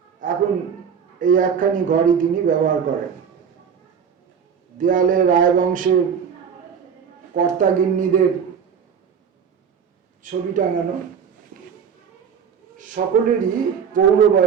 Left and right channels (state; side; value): quieter; left; 7.1 dB